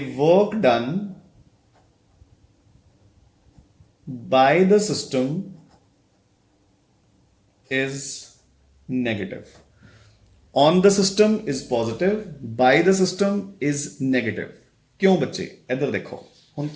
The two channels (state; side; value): identical; both; correlation 1.00